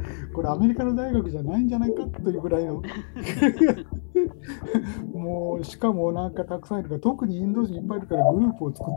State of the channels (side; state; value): right; silent; digital silence